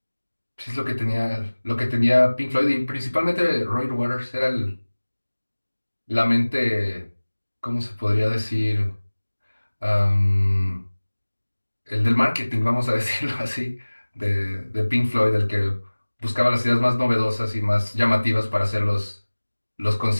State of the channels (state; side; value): inverted; both; correlation -1.00